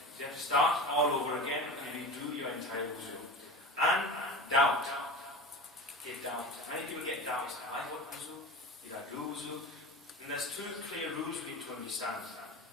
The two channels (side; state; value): both; normal; correlation 0.31